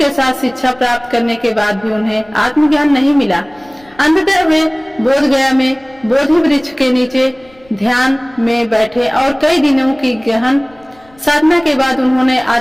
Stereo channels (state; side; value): noise; left; rumble, 29 dB below the sound